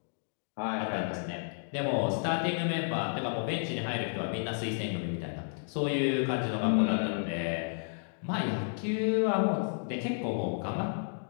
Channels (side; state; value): right; silent; digital silence